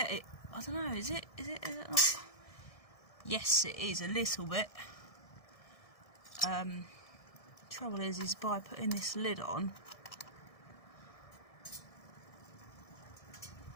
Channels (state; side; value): late; right; 1.6 ms